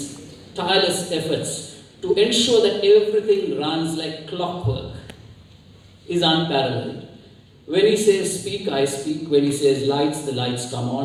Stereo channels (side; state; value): both; identical; correlation 1.00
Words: tireless efforts to ensure that everything runs like clockwork is unparalleled. When he says speak, I speak. When he says lights, the lights come